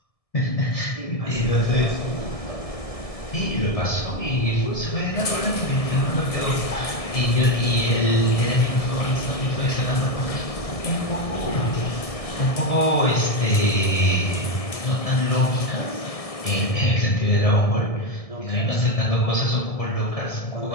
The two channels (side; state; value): right; late; 1.7 ms